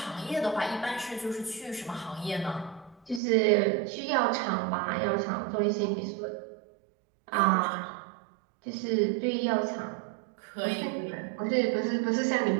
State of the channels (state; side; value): drops out; left; at 3.2 s